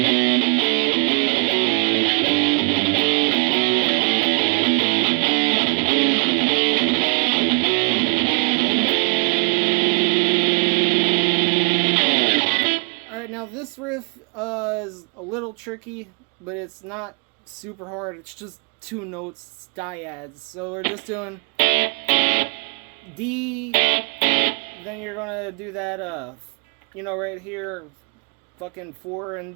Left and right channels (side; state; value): left; quieter; 34.7 dB